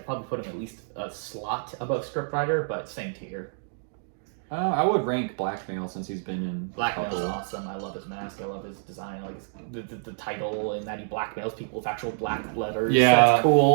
probably put him at least a slot above scriptwriter, but same tier. I would rank Blackmail since he's been in Blackmail's couple. awesome. I love his mask. I love his design. I like the title and that he blackmails people with actual black letters. Yeah. That's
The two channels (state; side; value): silent; left; digital silence